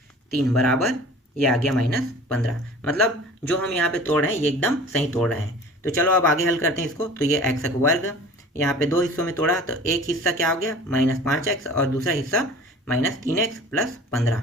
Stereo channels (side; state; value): both; normal; correlation 0.43